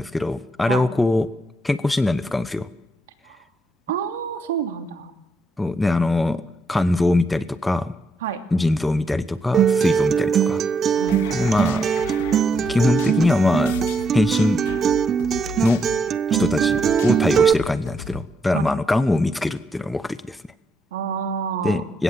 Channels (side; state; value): both; normal; correlation 0.78